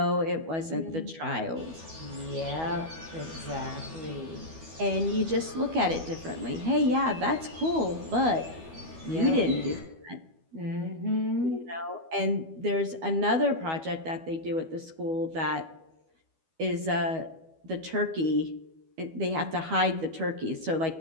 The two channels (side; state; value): left; late; 12 ms